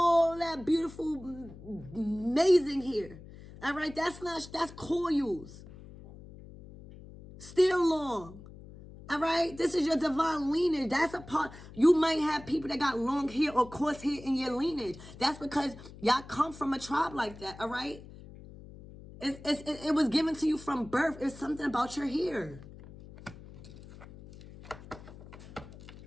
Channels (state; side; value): noise; left; hum, 17 dB below the sound